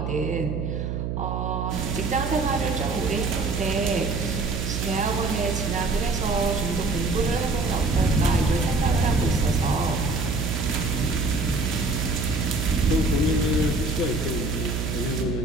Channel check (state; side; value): noise; right; hum, 3 dB below the sound